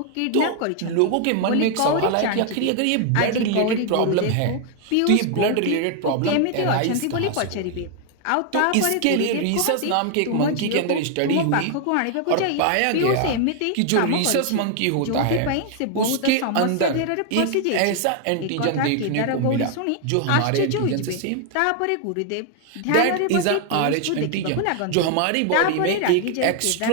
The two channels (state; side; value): different; both; correlation 0.00